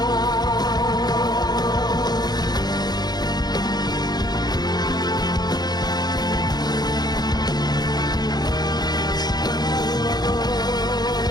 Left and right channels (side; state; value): right; late; 0.20 ms